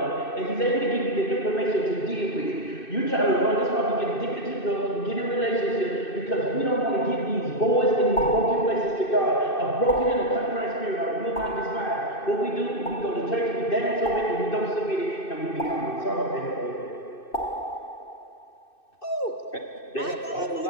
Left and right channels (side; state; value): right; late; 2.6 ms